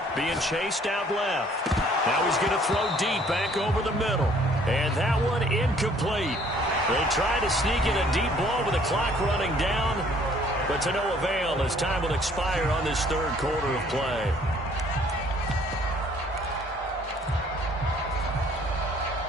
being chased out left. Now he's going to throw deep back over the middle. And that one incomplete. They tried to sneak in a deep ball with the clock running down, but to no avail as time will expire on this third quarter of play.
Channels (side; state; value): both; normal; correlation 0.59